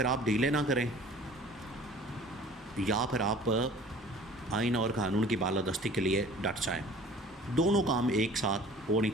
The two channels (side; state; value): both; normal; correlation 0.48